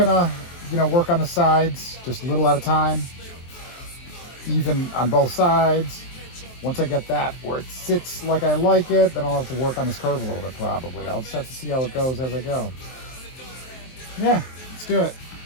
work on the sides, just a little at a time. Even on both sides. Once I get that where it sits like I like it, then I'll have to work on this curve a little bit probably. I'll just have to see how it goes as I go. Yeah, let's do it.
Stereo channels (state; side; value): late; right; 23 ms